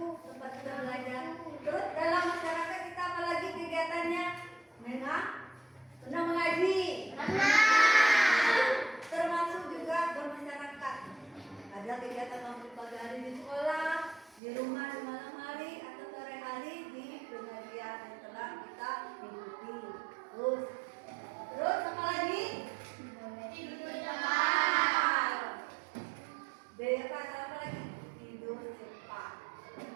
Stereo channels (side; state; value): left; drops out; at 14.4 s